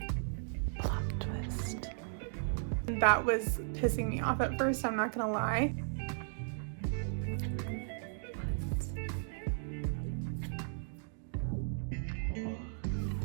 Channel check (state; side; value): silent; left; digital silence